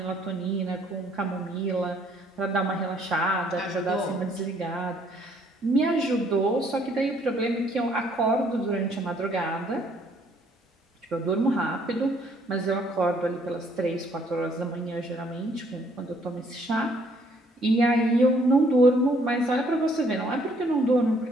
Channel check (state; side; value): normal; both; correlation 0.65